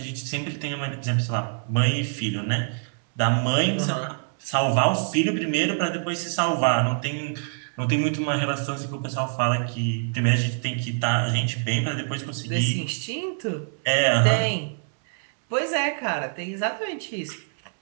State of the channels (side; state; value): left; silent; 62 dB below the other